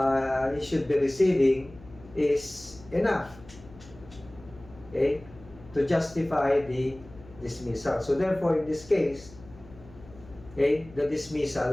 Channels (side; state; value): left; noise; hum, 21 dB below the sound